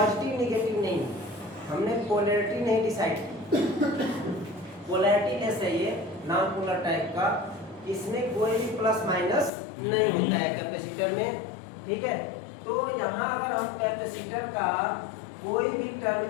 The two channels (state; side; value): drops out; right; at 9.5 s